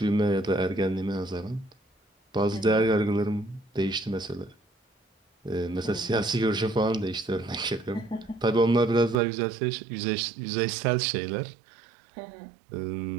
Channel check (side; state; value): left; drops out; at 9.2 s